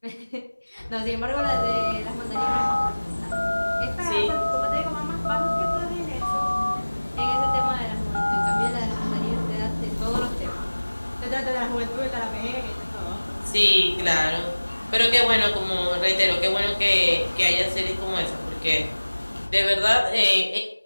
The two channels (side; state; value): both; inverted; correlation -1.00